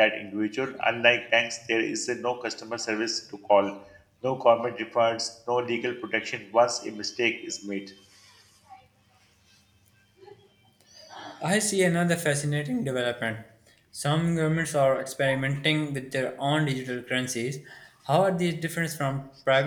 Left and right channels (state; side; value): identical; both; correlation 1.00